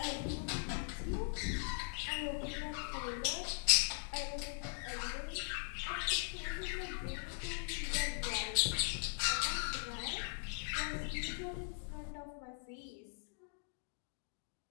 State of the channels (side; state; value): right; silent; digital silence